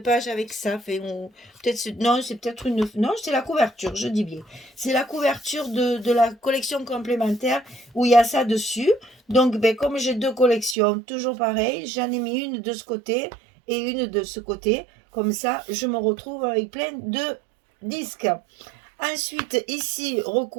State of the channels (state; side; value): drops out; left; at 10.8 s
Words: page avec ça. Non, c'est peut-être une... Non, c'est la couverture, je dis bien. C'est la couverture de la collection complémentaire où il y a ça dessus. Donc, ben, comme j'ai 2 collections, toujours pareil, j'en ai mis une de ce côté et une de ce côté. Comme ça, je me retrouve avec plein de disques. Ensuite, ici,